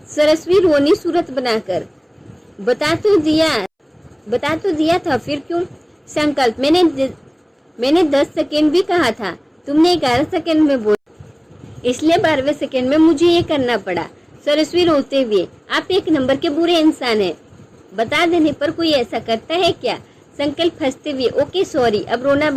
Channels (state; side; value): identical; both; correlation 1.00